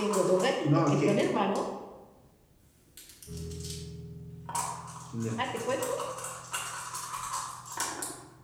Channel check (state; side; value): identical; both; correlation 1.00